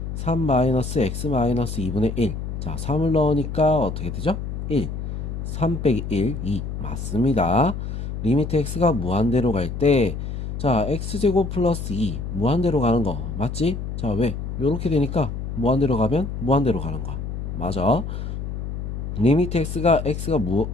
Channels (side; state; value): left; noise; hum, 5 dB below the sound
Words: 3 마이너스 x 마이너스 2분의 1. 자, 3을 넣으니까 어떻게 되죠? 1. 3 빼기 1, 2 맞습니다. 리미트 x가 무한대로 갈 때 자, x제곱 플러스 2 무한대로 가는 거 맞지? 자, 왜? 요렇게 되니까 무한대로 가면 무한대로 가는 거야. 맞아. 리미트 x가